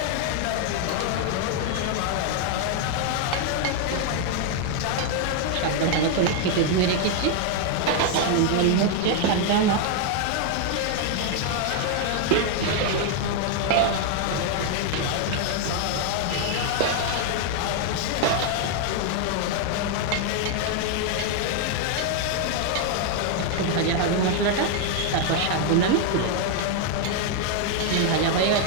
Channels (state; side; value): different; both; correlation 0.00